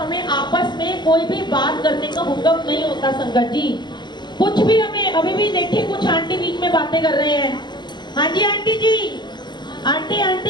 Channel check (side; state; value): right; late; 0.21 ms